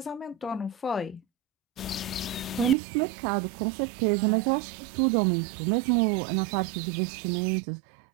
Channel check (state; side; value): drops out; left; at 2.8 s